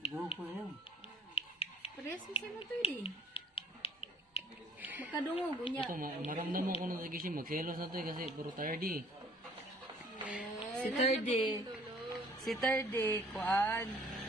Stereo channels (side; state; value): both; normal; correlation 0.57